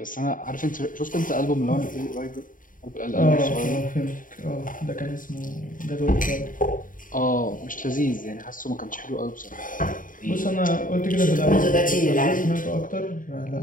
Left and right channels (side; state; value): right; late; 0.39 ms